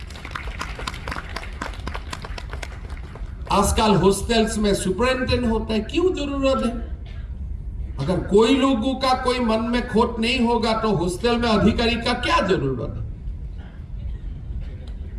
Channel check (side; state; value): both; identical; correlation 1.00